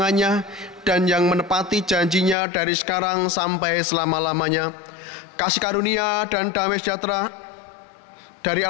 dan yang menepati janjinya dari sekarang sampai selama-lamanya. Kasih karunia dan damai sejahtera dari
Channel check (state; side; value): drops out; right; at 2.4 s